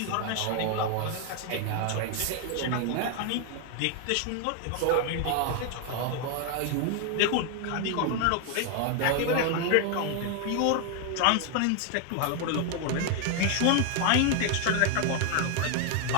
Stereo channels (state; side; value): different; both; correlation 0.01